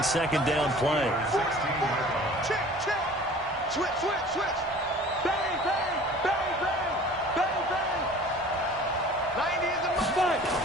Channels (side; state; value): both; normal; correlation 0.46